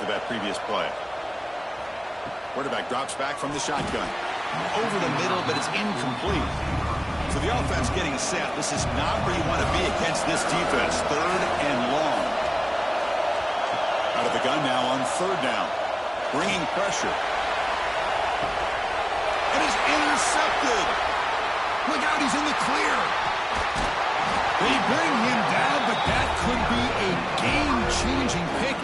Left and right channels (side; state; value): both; identical; correlation 1.00